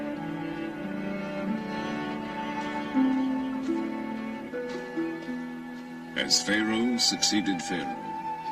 As Pharaoh succeeded Pharaoh,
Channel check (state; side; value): identical; both; correlation 1.00